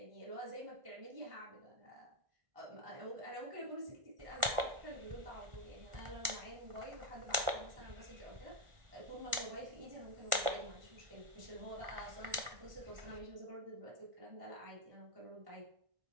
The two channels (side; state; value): left; late; 1.4 ms